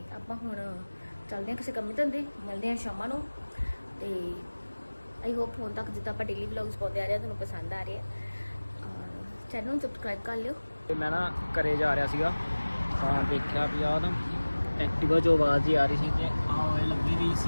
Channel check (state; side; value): inverted; both; correlation -1.00